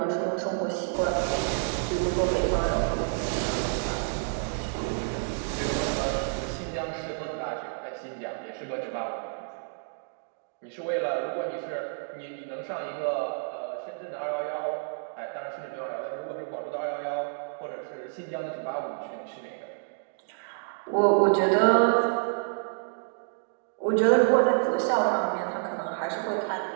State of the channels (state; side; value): silent; left; digital silence